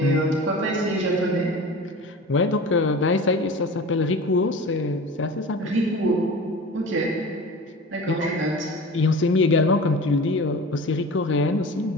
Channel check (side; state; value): both; normal; correlation 0.35